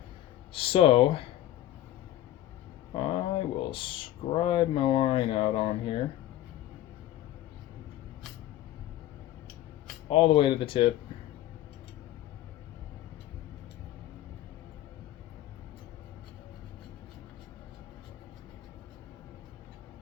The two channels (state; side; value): quieter; right; 13.7 dB